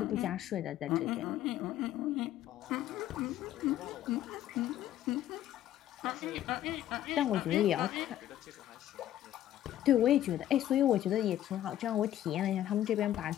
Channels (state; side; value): quieter; right; 12.5 dB